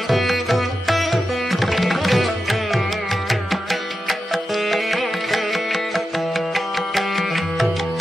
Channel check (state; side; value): normal; both; correlation 0.91